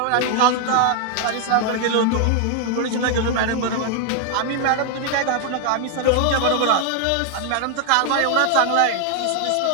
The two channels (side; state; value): both; different; correlation 0.00